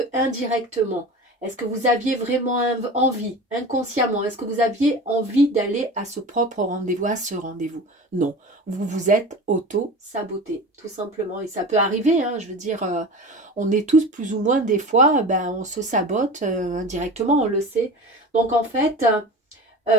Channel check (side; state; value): both; normal; correlation 0.33